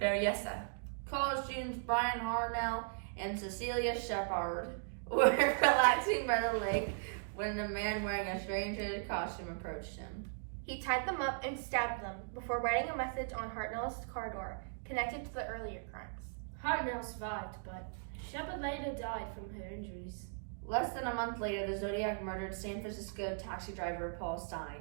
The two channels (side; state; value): left; silent; digital silence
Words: College students Brian Harnell and Cecilia Shepard were relaxing by the lake when a man wearing a strange hooded costume approached him. He tied them up and stabbed them before writing a message on Hartnell's car door connected to the earlier crimes. Hartnell survived, but Shepard later died from her injuries. Less than a month later, the Zodiac murdered San Francisco taxi driver Paul